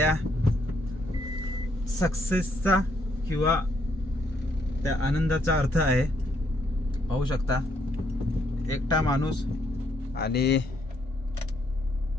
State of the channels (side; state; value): both; normal; correlation 0.72